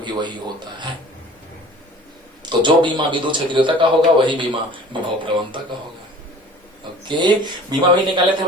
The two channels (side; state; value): both; normal; correlation 0.45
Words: वही होता है। तो जो बीमा विद्युत क्षेत्रता का होगा वही बीमा विभव प्रवणता का होगा। ओके, बीमा भी निकाले थे